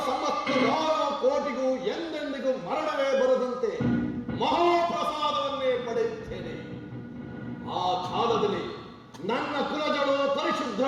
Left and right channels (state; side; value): identical; both; correlation 1.00